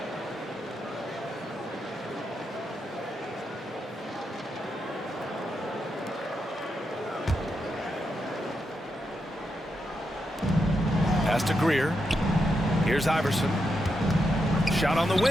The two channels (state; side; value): normal; both; correlation 0.84